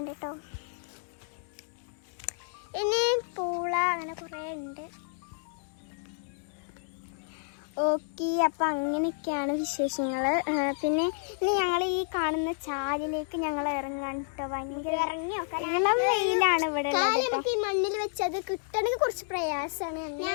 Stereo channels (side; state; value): right; silent; digital silence